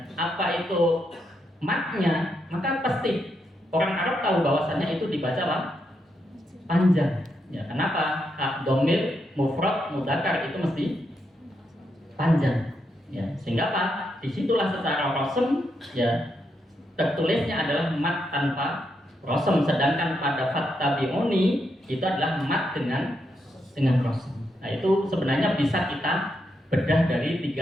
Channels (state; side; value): normal; both; correlation 0.81